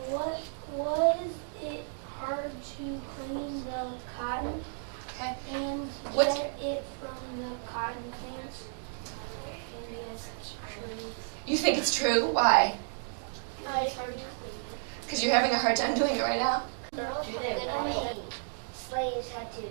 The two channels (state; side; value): silent; left; digital silence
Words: What was it hard to clean the cotton Okay. and What- get it from the cotton plants? And yes, it's true. You think it's true? Why? It's hard to clean. Because you're having a hard time doing it right now? Slaves had to